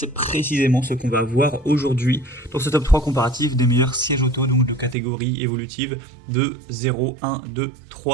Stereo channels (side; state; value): left; drops out; at 5.0 s